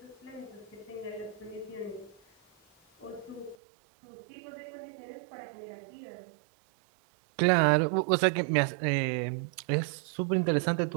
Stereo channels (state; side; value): drops out; left; at 3.6 s